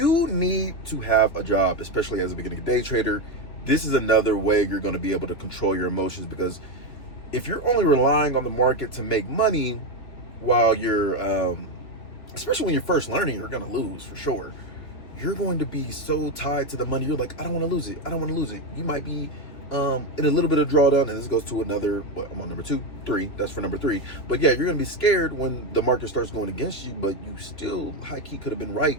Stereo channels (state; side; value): late; right; 3.2 ms